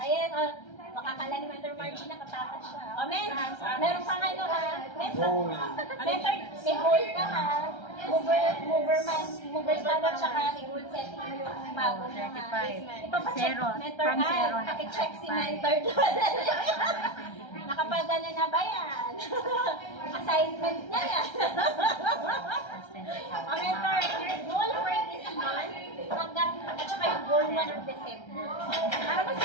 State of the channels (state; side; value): late; right; 1.3 ms